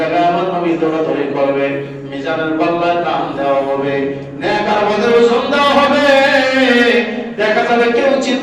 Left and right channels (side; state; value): both; identical; correlation 1.00